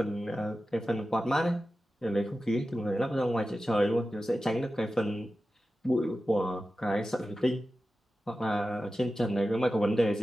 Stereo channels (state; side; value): normal; both; correlation 0.93